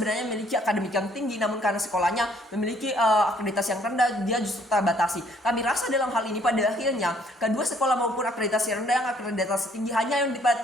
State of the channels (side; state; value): both; normal; correlation 0.63